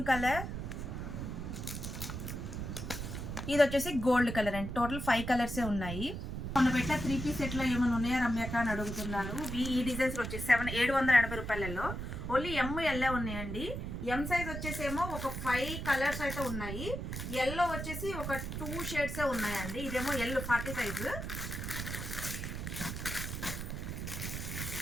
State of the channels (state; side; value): noise; right; rumble, 5 dB below the sound